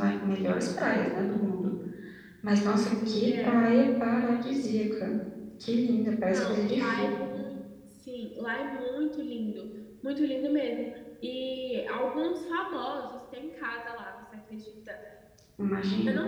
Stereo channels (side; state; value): both; identical; correlation 1.00